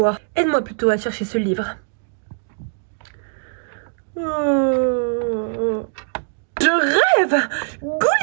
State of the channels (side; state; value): left; silent; 65 dB below the other